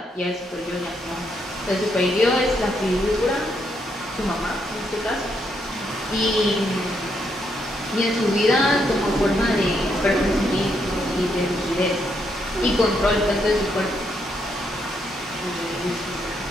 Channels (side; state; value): both; normal; correlation 0.77